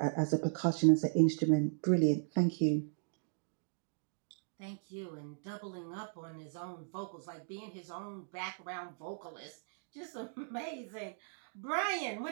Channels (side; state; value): left; silent; digital silence